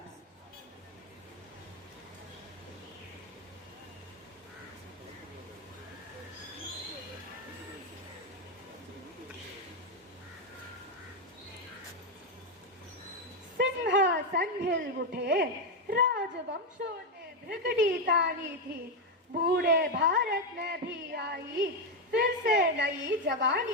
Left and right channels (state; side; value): normal; both; correlation 0.06